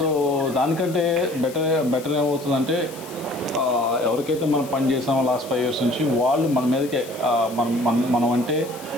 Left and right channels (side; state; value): left; noise; hiss, 18 dB below the sound